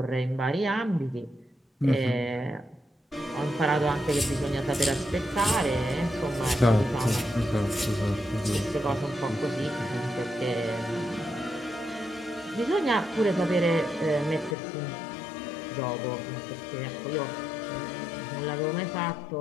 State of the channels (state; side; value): drops out; right; at 14.6 s